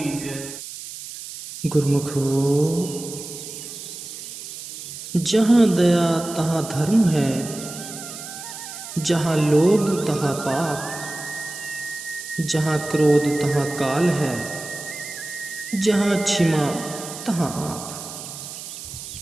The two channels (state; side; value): noise; right; hiss, 11 dB below the sound